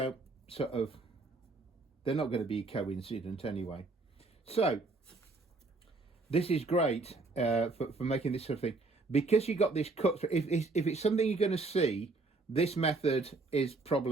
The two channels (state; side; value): quieter; left; 3.6 dB